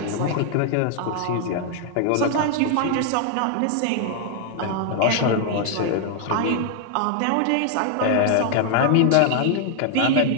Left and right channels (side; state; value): both; different; correlation 0.00